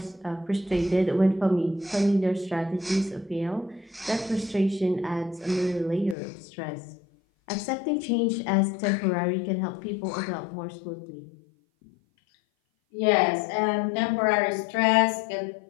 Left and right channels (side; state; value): right; drops out; at 6.2 s